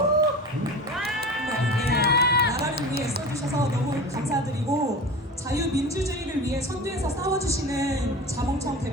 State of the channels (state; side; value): normal; both; correlation 0.33